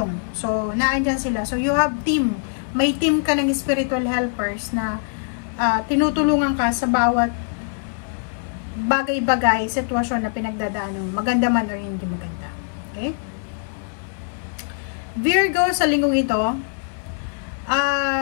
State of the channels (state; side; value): silent; right; 60 dB below the other